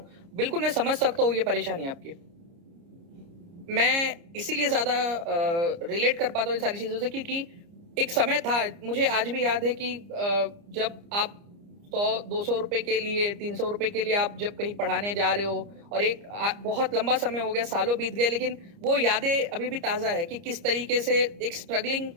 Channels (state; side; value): late; left; 30 ms